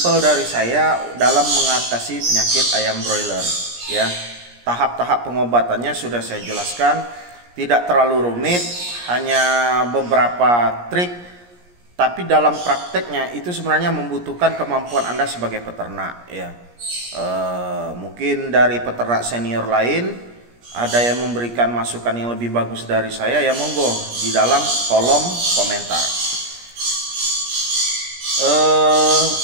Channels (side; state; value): left; late; 17 ms